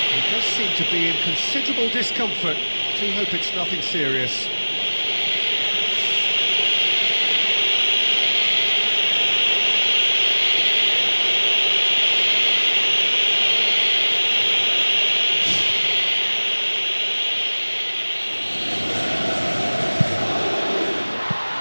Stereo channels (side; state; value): both; inverted; correlation -1.00